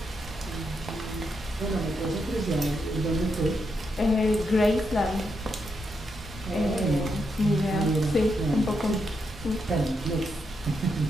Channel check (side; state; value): both; normal; correlation 0.82